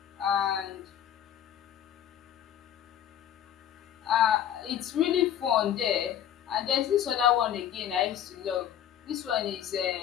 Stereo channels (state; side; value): quieter; right; 10.3 dB